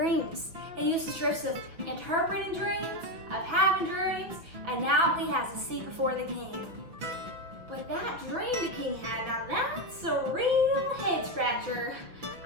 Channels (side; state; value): left; late; 5.8 ms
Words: He used his gifts of interpreting dreams, of having dreams, and now he has a seat before the king. But that dream the king had, now that's a real head scratcher.